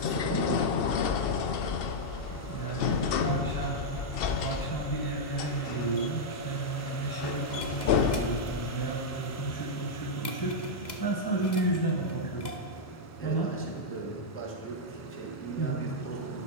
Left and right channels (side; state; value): right; late; 2.0 ms